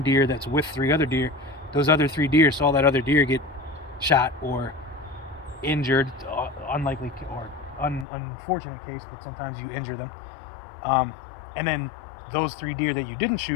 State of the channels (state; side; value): drops out; right; at 8.1 s